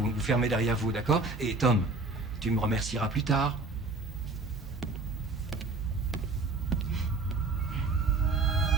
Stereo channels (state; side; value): quieter; left; 3.4 dB